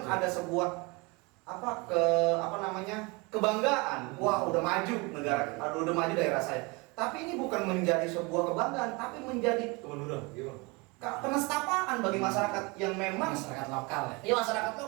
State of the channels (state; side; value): quieter; left; 27.3 dB